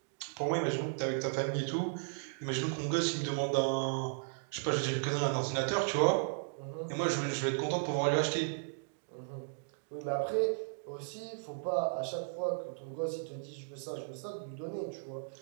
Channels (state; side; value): silent; left; digital silence